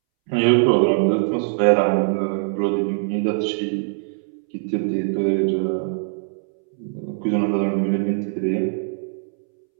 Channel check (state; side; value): silent; left; 64 dB below the other